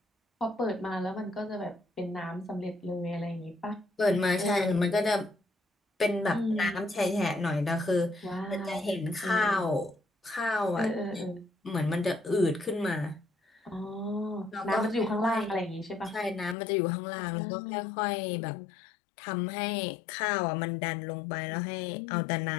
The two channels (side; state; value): right; drops out; at 16.6 s